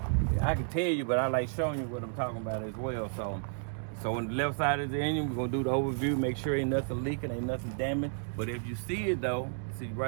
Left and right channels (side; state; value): left; silent; digital silence